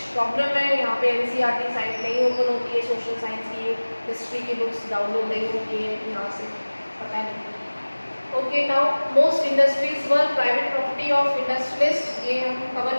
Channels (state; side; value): inverted; both; correlation -1.00